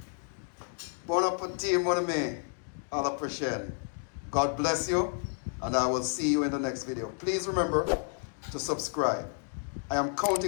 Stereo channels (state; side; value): silent; right; 55 dB below the other